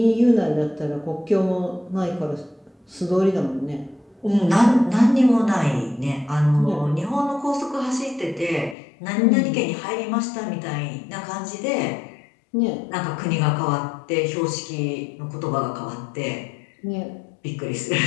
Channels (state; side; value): drops out; right; at 8.8 s